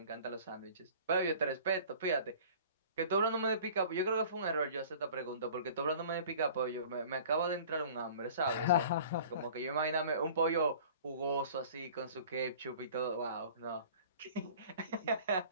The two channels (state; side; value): inverted; both; correlation -0.46